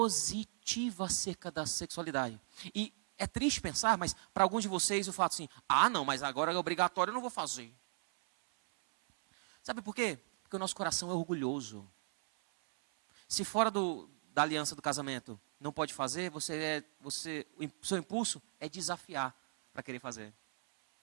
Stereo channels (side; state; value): left; silent; 53 dB below the other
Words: acerca da sexualidade. E é triste pensar, mas para alguns de vocês eu falo assim, não, mas agora é obrigatório, eu não vou fazer. Sabe por quê? Porque o nosso coração é orgulhoso. Se fora da aliança do casamento não pode fazer, o seu impulso é desafiar para querer fazer.